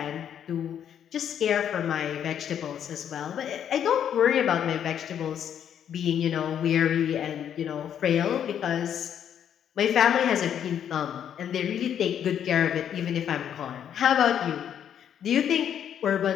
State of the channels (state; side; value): quieter; right; 9.2 dB